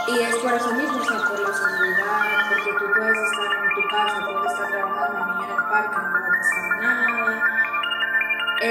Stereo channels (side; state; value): both; identical; correlation 1.00